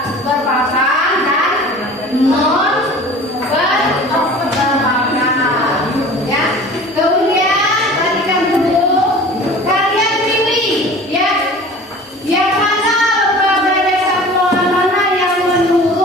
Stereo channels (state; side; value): normal; both; correlation 0.42